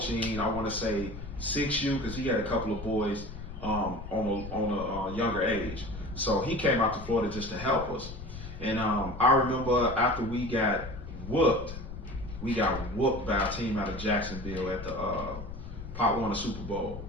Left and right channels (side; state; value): left; noise; rumble, 10 dB below the sound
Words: I want to say 6U, because he had a couple of boys on a younger age. So he came out to Florida just to help us. And I remember after we got whooped by a team out of Jacksonville at the Pop Warner Super Bowl.